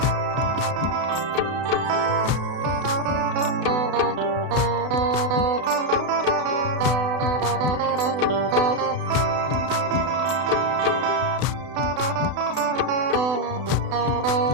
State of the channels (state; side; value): late; left; 32 ms